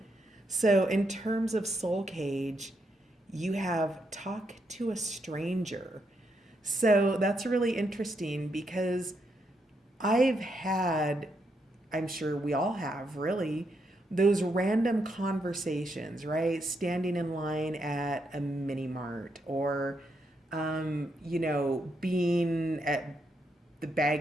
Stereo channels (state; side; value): normal; both; correlation 0.79